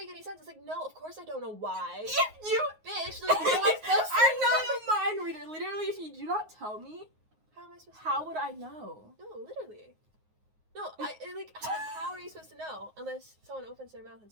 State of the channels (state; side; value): late; left; 9.5 ms